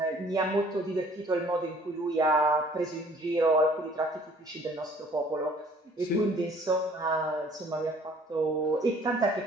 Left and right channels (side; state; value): both; normal; correlation 0.55